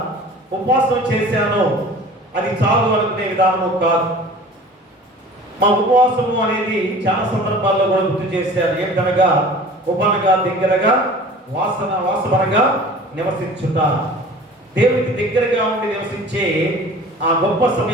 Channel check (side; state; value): both; normal; correlation 0.43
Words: ఉపవాసం చేశాను అది చాలు అనుకునే విధానము కాదు. మా ఉపవాసము అనేది చాలా సందర్భాల్లో కూడా గుర్తు చేశారు. ఏంటనగా ఉపనగా దగ్గరగా వాసనగా నివసించుట, దేవునికి దగ్గరగా ఉండి నివసించే ఆ గొప్ప